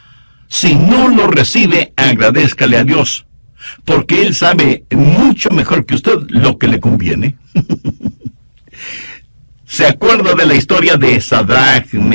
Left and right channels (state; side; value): inverted; both; correlation -1.00